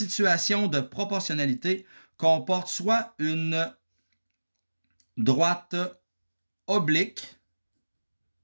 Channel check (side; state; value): both; inverted; correlation -1.00